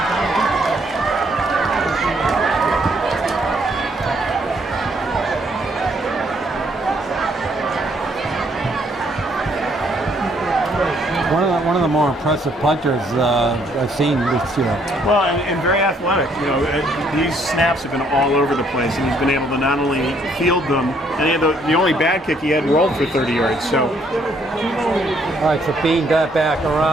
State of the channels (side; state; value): both; normal; correlation 0.68